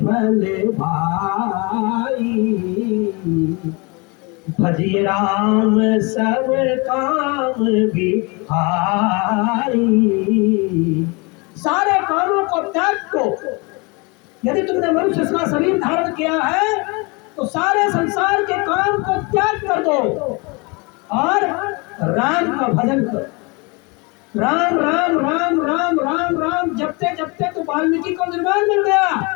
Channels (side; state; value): right; quieter; 28.8 dB